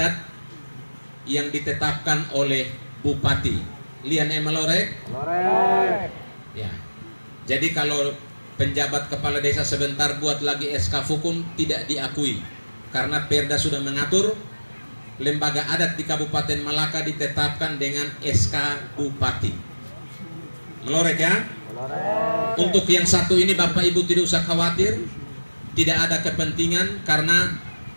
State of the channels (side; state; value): both; inverted; correlation -1.00